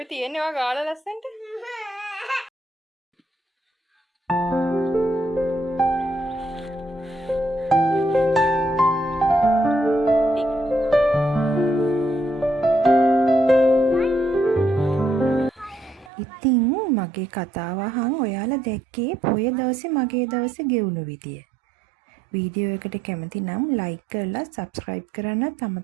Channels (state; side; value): drops out; left; at 16.1 s